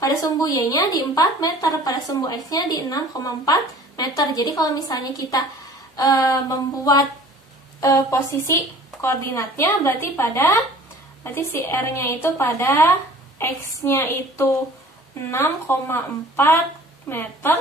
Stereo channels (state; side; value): normal; both; correlation 0.48